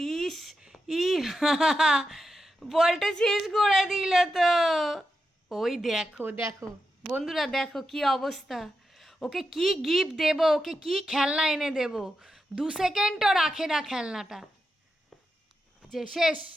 ইস ই বলটা শেষ করে দিল তো। ওই দেখো দেখো বন্ধুরা, দেখো কি অবস্থা। ওকে কি গিফট দেব, ওকে কি খেলনা এনে দেব, 2 সেকেন্ডও রাখে না খেলনাটা। যে শেষ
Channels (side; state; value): both; normal; correlation 0.88